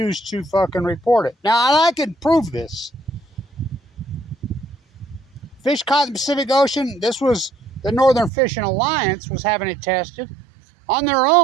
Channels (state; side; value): drops out; left; at 8.3 s